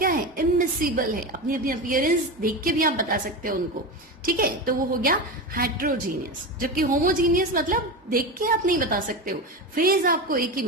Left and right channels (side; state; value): both; normal; correlation 0.21